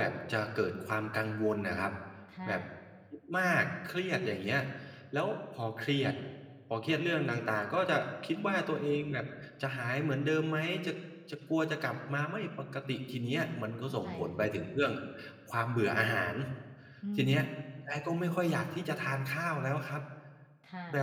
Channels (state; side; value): identical; both; correlation 1.00